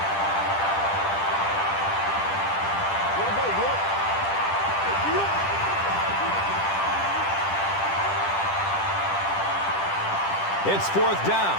It's 4th down.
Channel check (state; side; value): late; right; 10 ms